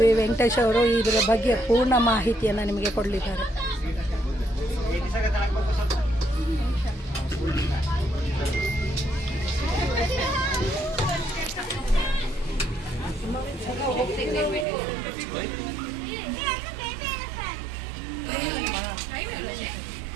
ವೆಂಕಟೇಶ್ ಅವರು ಇದರ ಬಗ್ಗೆ ಪೂರ್ಣ ಮಾಹಿತಿಯನ್ನು ನಿಮಗೆ ಕೊಡಲಿದ್ದಾರೆ.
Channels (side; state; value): left; drops out; at 14.7 s